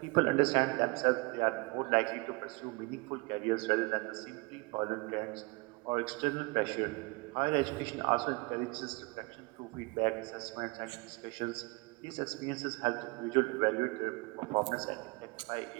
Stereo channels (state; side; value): quieter; left; 26.7 dB